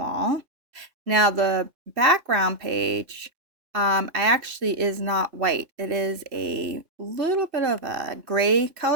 Now the background page, I actually is not white. It is a little bit of a gray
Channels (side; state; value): left; late; 3.0 ms